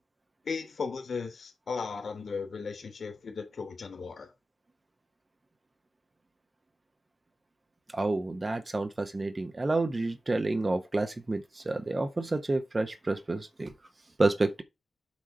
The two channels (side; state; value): both; normal; correlation 0.95